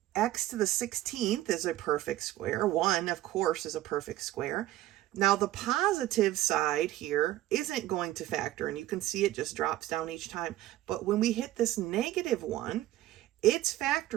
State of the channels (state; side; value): quieter; left; 14.8 dB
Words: X to the 16th is a perfect square. 1, of course, is a perfect square. Now, the positive side here isn't going to factor, and you can see it just drops down each time. But when we hit this negative 1, it's